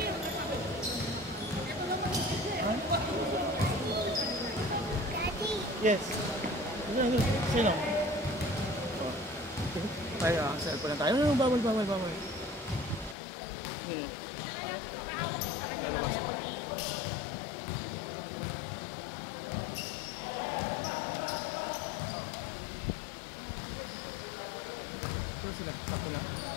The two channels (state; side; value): drops out; right; at 13.2 s